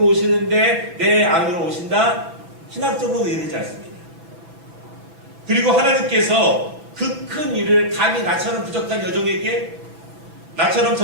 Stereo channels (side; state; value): left; late; 5.9 ms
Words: 오시는데 내 안으로 오신다? 신학적으로도 이해되지 않습니다. 그리고 하나님께서 그 큰 일을 감히 나처럼 부족한 여종에게, 나처럼